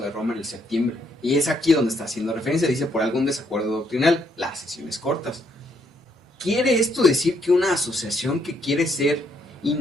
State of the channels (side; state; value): both; normal; correlation 0.72